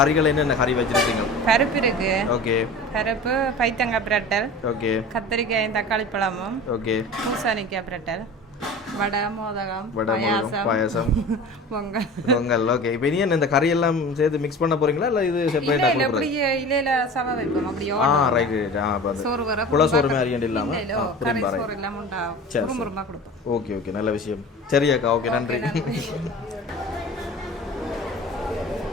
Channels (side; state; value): both; normal; correlation 0.37